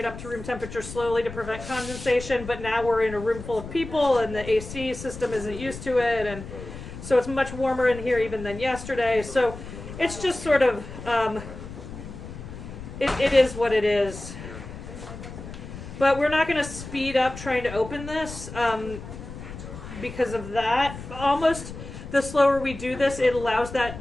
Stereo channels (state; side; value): noise; left; rumble, 12 dB below the sound